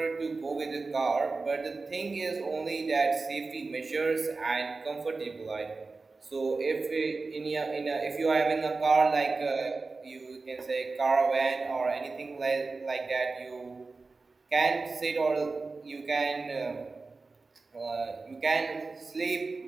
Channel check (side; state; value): left; quieter; 3.9 dB